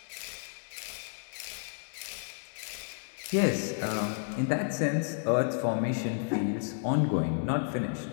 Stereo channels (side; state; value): right; silent; 57 dB below the other